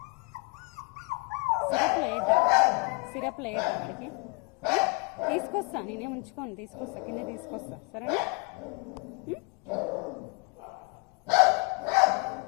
సిరప్లో వేద్దా వాడికి? తీసుకొస్తా, నేనేం ఉంచుకోను, తీసుకొస్తా, కింద తీసుకొస్తా, సరేనా?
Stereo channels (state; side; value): quieter; right; 30.7 dB